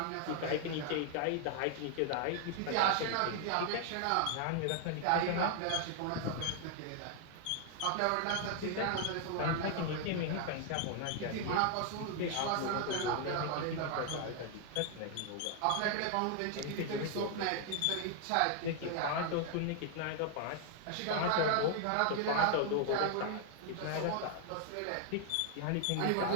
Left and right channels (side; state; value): both; different; correlation 0.00